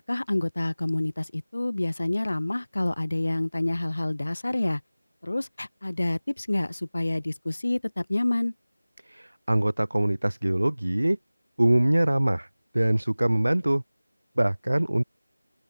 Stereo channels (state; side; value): inverted; both; correlation -0.99